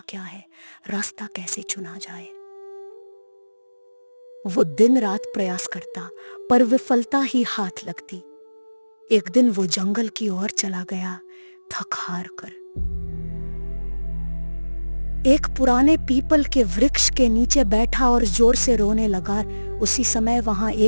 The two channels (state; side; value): inverted; both; correlation -1.00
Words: क्या है, रास्ता कैसे चुना जाए। वो दिन रात प्रयास करता, पर विफलता ही हाथ लगती। एक दिन वो जंगल की ओर चला गया, थक हार कर। एक पुराने पीपल के वृक्ष के नीचे बैठा और जोर से रोने लगा। उसी समय वहां